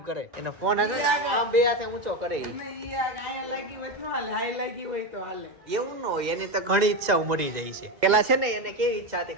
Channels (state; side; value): late; left; 2.0 ms